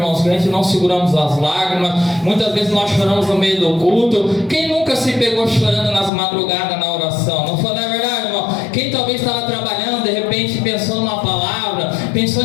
que a gente não seguramos as lágrimas. Muitas vezes nós choramos no meio do culto. Quem nunca se pegou chorando nas madrugadas na oração? Não foi, não é verdade, irmão? Quem talvez estava trabalhando, de repente pensando na palavra,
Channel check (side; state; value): right; drops out; at 6.1 s